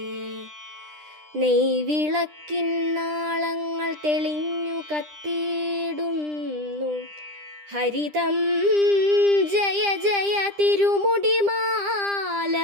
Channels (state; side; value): late; left; 10 ms